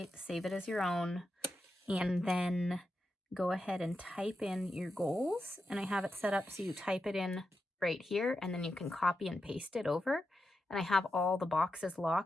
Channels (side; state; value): both; normal; correlation 0.88